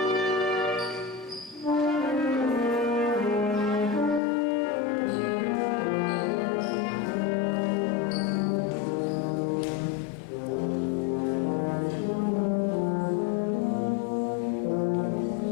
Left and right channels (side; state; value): right; drops out; at 4.2 s